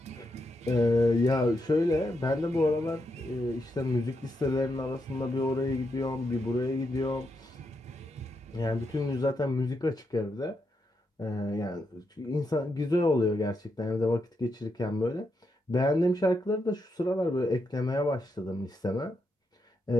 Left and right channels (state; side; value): normal; both; correlation 0.82